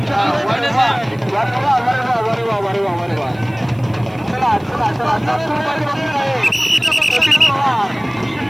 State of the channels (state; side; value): noise; right; hiss, 30 dB below the sound